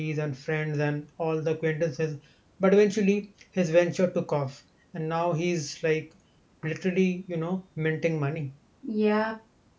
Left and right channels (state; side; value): identical; both; correlation 1.00